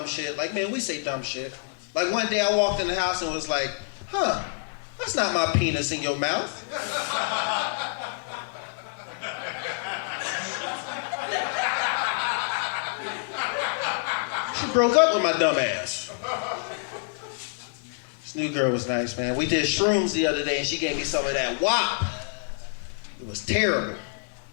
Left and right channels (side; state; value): right; silent; digital silence